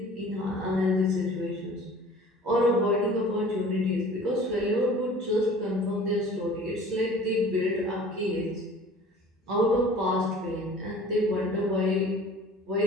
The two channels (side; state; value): both; normal; correlation 0.46